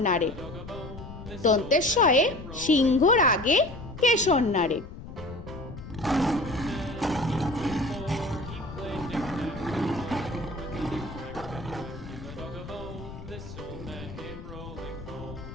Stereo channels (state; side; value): noise; left; rumble, 12 dB below the sound